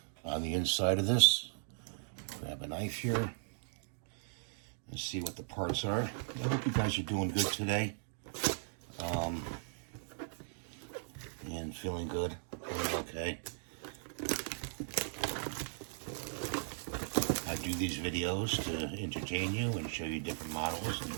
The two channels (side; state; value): left; silent; digital silence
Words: on the inside of this. Grab a knife here and see what the parts are. I hope you guys are doing good today. And feeling good. Feeling okay. I do these videos to entertain you and show you different models and